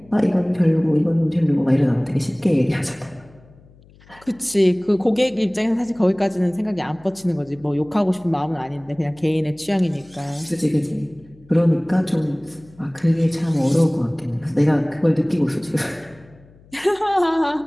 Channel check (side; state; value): left; noise; hum, 26 dB below the sound